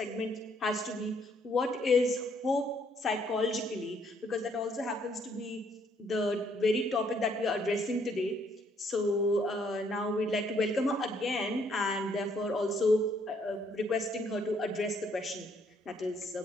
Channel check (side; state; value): both; normal; correlation 0.68